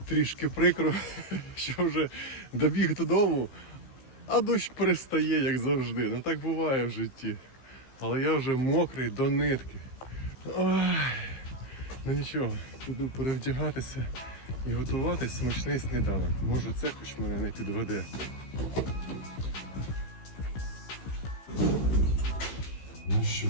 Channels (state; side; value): late; right; 16 ms